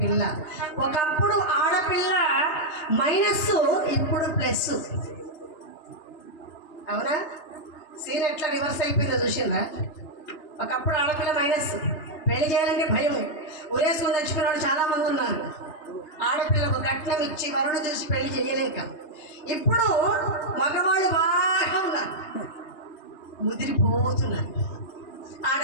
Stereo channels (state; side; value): late; right; 2.9 ms